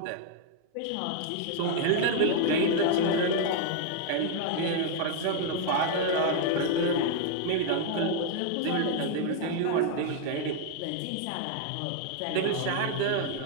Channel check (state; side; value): different; both; correlation 0.00